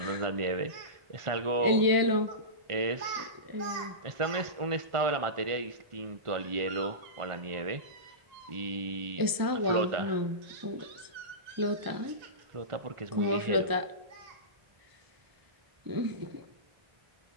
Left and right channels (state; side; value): late; left; 1.0 ms